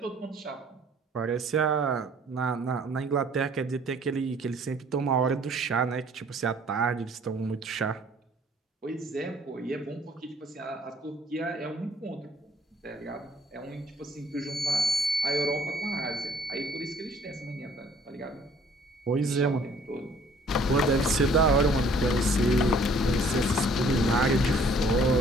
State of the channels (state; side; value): normal; both; correlation 0.58